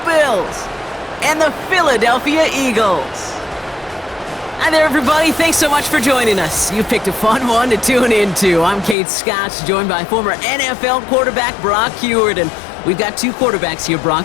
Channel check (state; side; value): drops out; right; at 9.0 s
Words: Bills and the Philadelphia Eagles. Hi there, everybody. Thanks so much for joining us. You picked a fun one to tune into. I'm Kate Scott, joined by former NFL quarterback Brock Huard. And we've got two quarterbacks here, Brock,